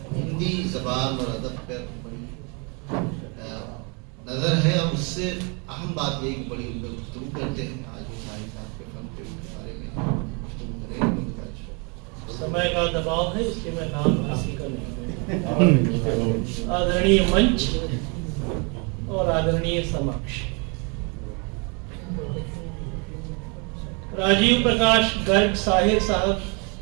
हिंदी ज़बान और अदब पर बड़ी नज़र है और उससे अहम बात ये कि बड़ी गुफ्तगू करते हैं। आज वो साहिब साहब के फन के बारे में गुफ्तगू करेंगे। समय का दबाव है इसलिए मैं नाम हासिल कर नहीं। आदरणीय मंच और आदरणीय समक्ष, राजीव प्रकाश गर्ग साहिर साहब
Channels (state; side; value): quieter; left; 33.3 dB